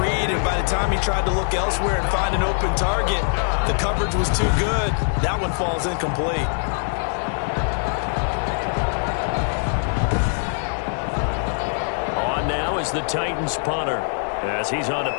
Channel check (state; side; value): silent; right; 64 dB below the other